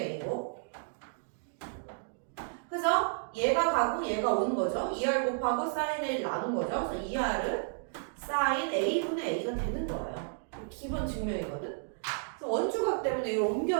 그래서 얘가 가고 얘가 오는 거죠. 2R 곱하고 sin A를 나눈 거죠. 그래서 2R은 sin A분의 A가 되는 거예요. 기본 증명이거든. 그래서 원주각 때문에 이걸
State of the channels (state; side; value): silent; left; digital silence